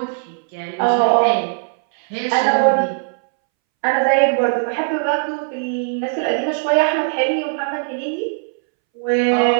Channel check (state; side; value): silent; left; 65 dB below the other